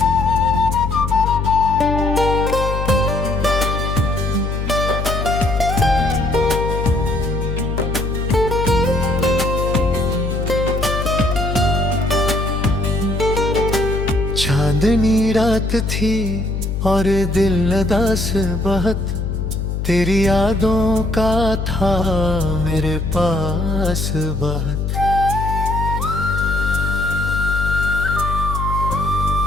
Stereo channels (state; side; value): noise; left; hum, 2 dB below the sound